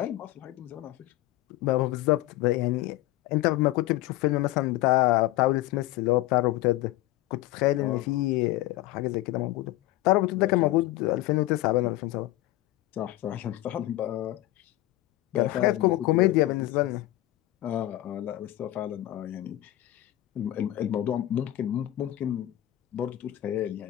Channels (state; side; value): quieter; right; 16.2 dB